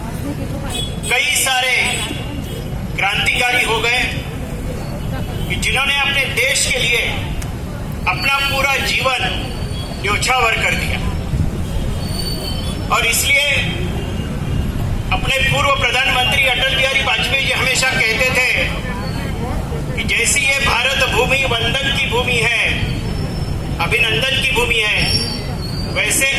कई सारे क्रांतिकारी हो गए कि जिन्होंने अपने देश के लिए अपना पूरा जीवन न्योछावर कर दिया। और इसलिए अपने पूर्व प्रधानमंत्री अटल बिहारी वाजपेयी जी हमेशा कहते थे कि जैसी ये भारत भूमि वंदन की भूमि है, अभिनंदन की भूमि है, वैसे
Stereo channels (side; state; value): both; identical; correlation 1.00